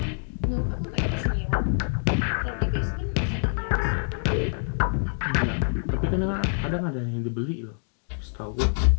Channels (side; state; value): right; silent; digital silence